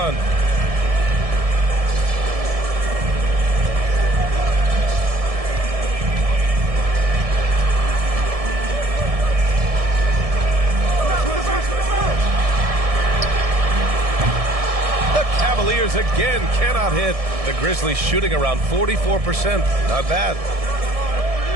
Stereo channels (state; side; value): late; left; 1.7 ms